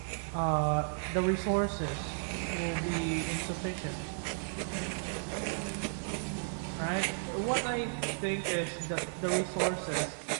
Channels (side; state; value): left; silent; digital silence